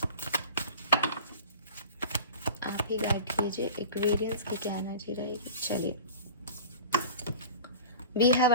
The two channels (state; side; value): inverted; both; correlation -0.37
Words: आप ही गाइड कीजिए। एक्वेरियंस की क्या एनर्जी रहेगी। चलिए, we have